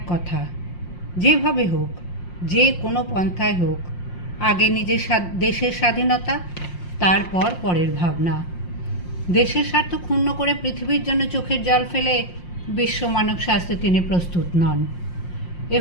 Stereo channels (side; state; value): right; late; 5.6 ms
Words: কথা, যেভাবে হোক, যে কোনো পন্থায় হোক, আগে নিজের দেশের স্বাধীনতা, তারপর পরের ভাবনা। দেশের স্বার্থ ক্ষুণ্ণ করে পৃথিবীর জন্য চোখের জল ফেলে বিশ্ব মানব স্বাস্থ্যে তিনি প্রস্তুত নন। এ